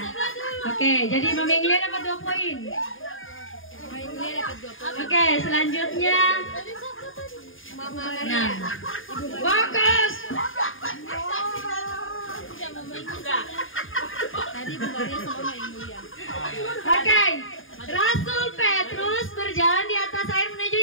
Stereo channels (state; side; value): late; right; 0.59 ms